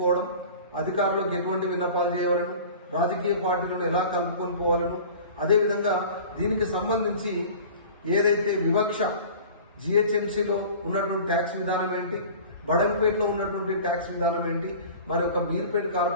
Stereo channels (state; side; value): inverted; both; correlation -0.41